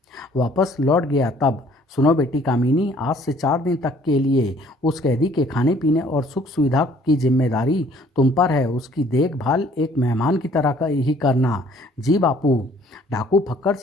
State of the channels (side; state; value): both; normal; correlation 0.58